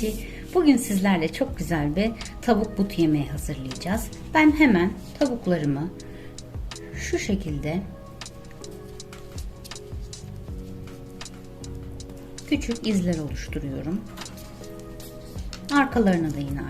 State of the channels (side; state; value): both; identical; correlation 1.00